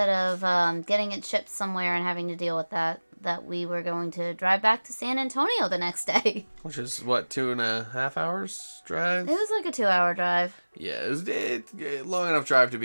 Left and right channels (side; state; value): both; inverted; correlation -1.00